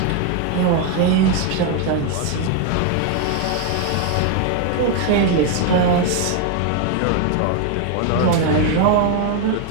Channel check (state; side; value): different; both; correlation 0.01